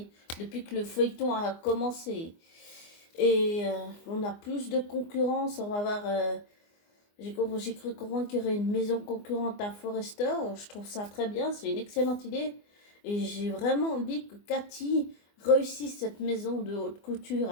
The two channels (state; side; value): late; right; 24 ms